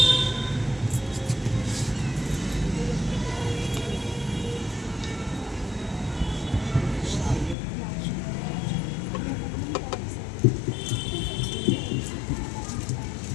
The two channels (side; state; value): right; drops out; at 7.6 s